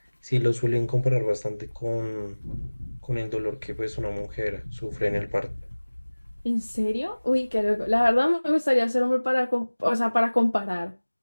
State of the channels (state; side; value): inverted; both; correlation -1.00